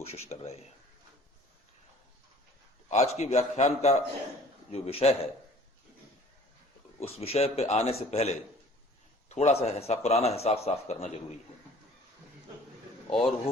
कर रहे हैं। आज के व्याख्यान का जो विषय है, उस विषय पे आने से पहले थोड़ा सा पुराना हिसाब साफ करना जरूरी है। और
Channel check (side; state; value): both; normal; correlation 0.51